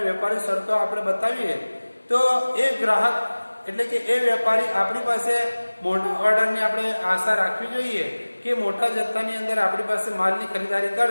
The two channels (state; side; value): inverted; both; correlation -1.00